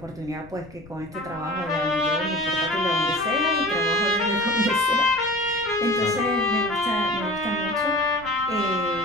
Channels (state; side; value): noise; left; rumble, 21 dB below the sound